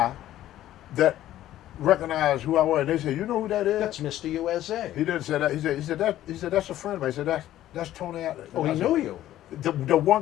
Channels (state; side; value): quieter; right; 13.4 dB